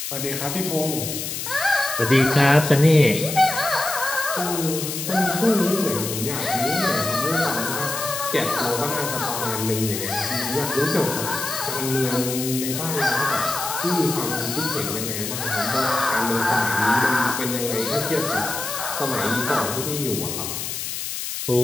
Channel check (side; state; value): left; noise; hiss, 5 dB below the sound